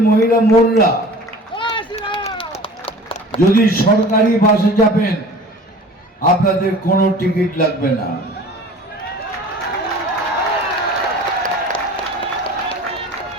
মহিলা বোনরা যদি সরকারি বাসে যাবেন আপনাদের কোনো টিকিট লাগবে না।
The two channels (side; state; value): both; normal; correlation 0.43